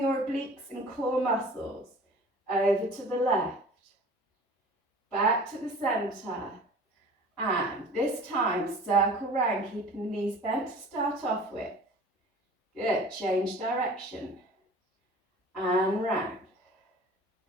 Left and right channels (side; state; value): both; normal; correlation 0.44